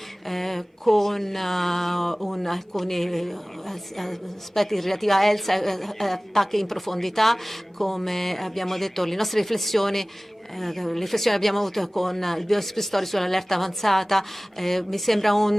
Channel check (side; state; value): both; normal; correlation 0.98